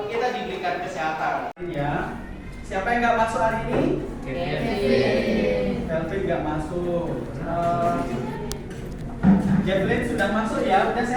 kita diberikan kesehatan. Ya. Siapa yang nggak masuk hari ini? Kelvin nggak masuk. Jacqueline sudah masuk ya. Udah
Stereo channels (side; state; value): both; identical; correlation 1.00